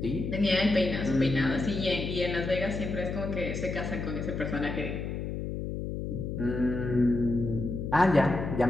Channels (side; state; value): left; noise; hum, 4 dB below the sound